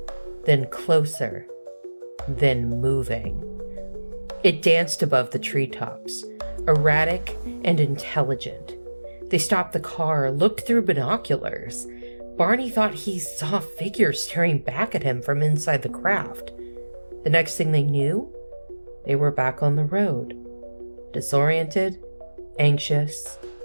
then closer, then moving. It danced above the treetops, erratic and intelligent. They stopped the car, looked through binoculars. Barney thought he saw figures staring back at him from inside the craft. The next thing they knew, they were back on the road, disoriented, anxious,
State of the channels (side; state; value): both; inverted; correlation -1.00